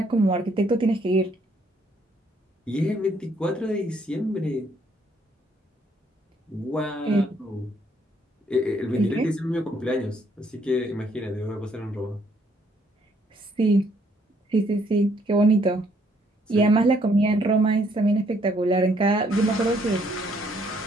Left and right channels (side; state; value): both; normal; correlation 0.68